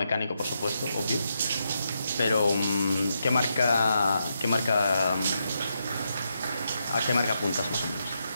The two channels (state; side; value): inverted; both; correlation -0.82